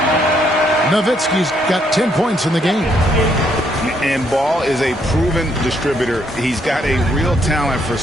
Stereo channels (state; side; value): normal; both; correlation 0.71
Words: Nowitzki's got 10 points in the game. And Ball is a proven distributor. He's got a real talent for